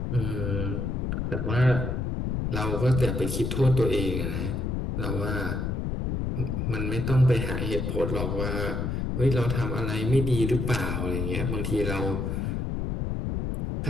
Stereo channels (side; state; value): left; noise; rumble, 1 dB below the sound